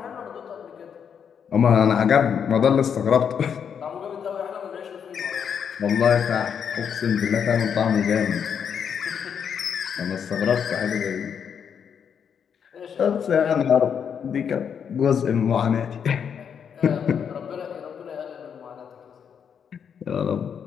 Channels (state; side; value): quieter; right; 7.5 dB